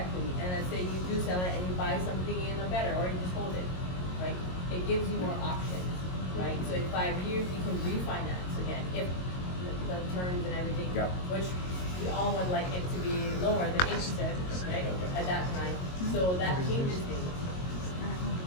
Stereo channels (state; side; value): late; right; 22 ms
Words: and let's say you do sell it and you buy something in a better, or you just hold it, right? It gives you more options, right? So in 5 years, you can refinance again, if the terms and everything, Yep. which we all would like it to be lower than 8%, right, at that time. So that changes things.